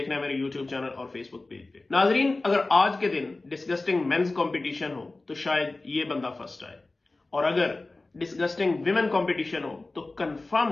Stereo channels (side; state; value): right; quieter; 3.2 dB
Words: रहे हैं मेरे यूट्यूब चैनल और फेसबुक पेज पे। नाजरीन, अगर आज के दिन डिस्गस्टिंग मेंस कंपटीशन हो तो शायद ये बंदा फर्स्ट आए, और अगर डिस्गस्टिंग विमेन कंपटीशन हो तो